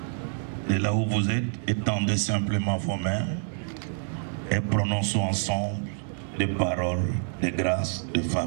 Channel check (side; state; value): left; silent; 60 dB below the other